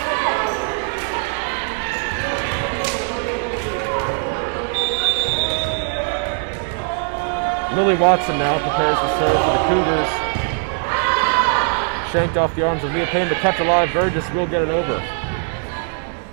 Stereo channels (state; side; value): silent; left; 56 dB below the other